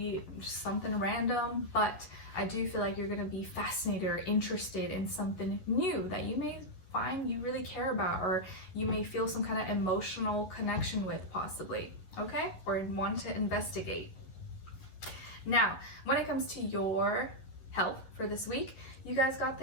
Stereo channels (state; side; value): late; right; 11 ms